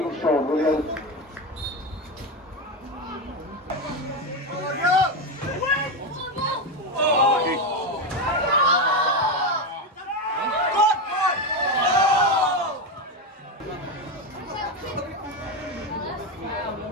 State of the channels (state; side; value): normal; both; correlation 0.13